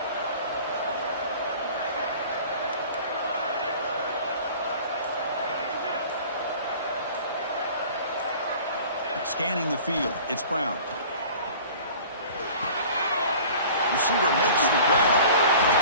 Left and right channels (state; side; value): inverted; both; correlation -0.44